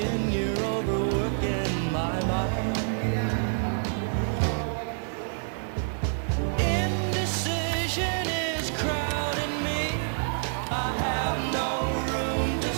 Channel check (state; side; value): silent; left; 60 dB below the other